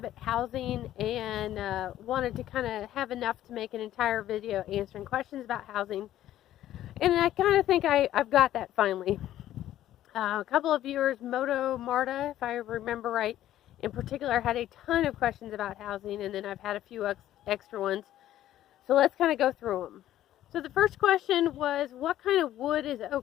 housing and wanted to kind of have enough to make an entire video answering questions about housing. And I kind of think I've got that finally. A couple of viewers, Moto Marta, if I remember right, in particular had a ton of questions about housing, and then I've had a few extra ones. So let's kind of go through them. So the first question was, what kind of wood is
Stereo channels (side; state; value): right; quieter; 12.9 dB